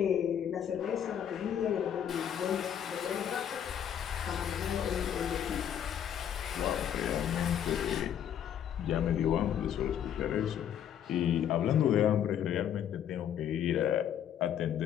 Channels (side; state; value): right; quieter; 9.5 dB